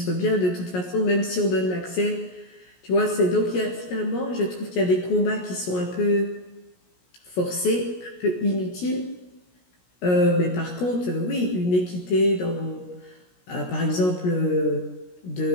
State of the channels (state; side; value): late; right; 17 ms